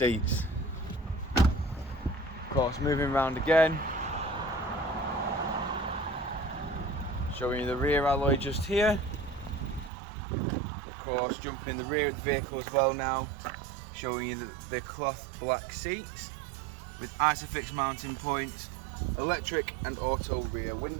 Of course, moving around again, showing you the rear alloy just here. Of course, jumping in the rear of the vehicle as well now, showing you the cloth black seats with Isofix mounting points, electric and auto rear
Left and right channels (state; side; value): drops out; left; at 9.9 s